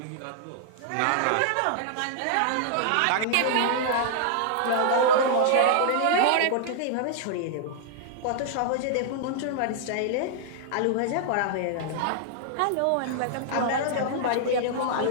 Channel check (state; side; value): different; both; correlation -0.01